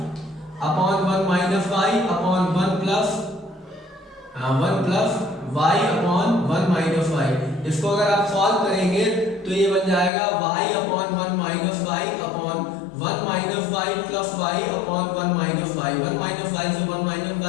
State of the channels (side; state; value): right; drops out; at 10.1 s